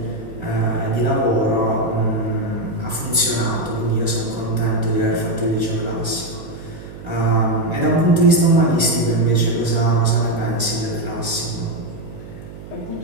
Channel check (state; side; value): noise; right; hum, 15 dB below the sound